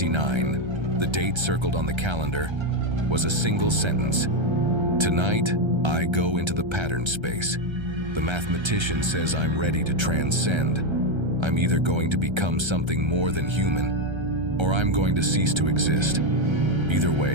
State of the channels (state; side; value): late; left; 1.3 ms